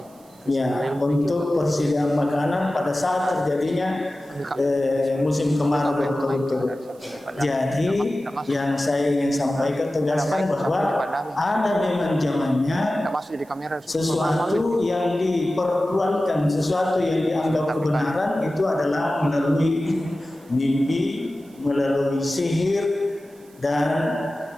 ya untuk persediaan makanan pada saat terjadinya musim kemarau berturut-turut. Jadi yang saya ingin sampaikan tegaskan bahwa ada memang zamannya sesuatu yang dipertuankan, sesuatu yang dianggap kebenaran itu adalah melalui mimpi, melalui sihir, dan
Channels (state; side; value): noise; right; hiss, 30 dB below the sound